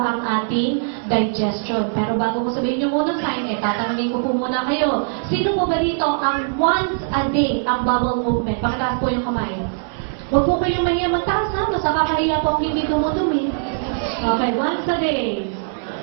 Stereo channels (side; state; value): left; silent; 65 dB below the other